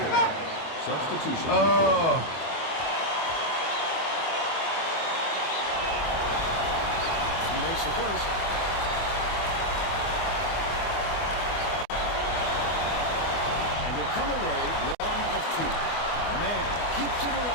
Substitution. Oh. He makes the first. And he'll come away 1 of 2. Man keeps it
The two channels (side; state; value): right; late; 24 ms